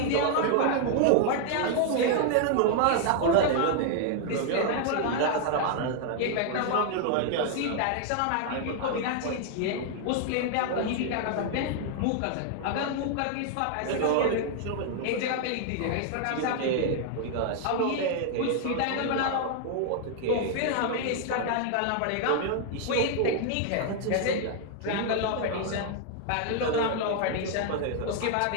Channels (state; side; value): different; both; correlation 0.00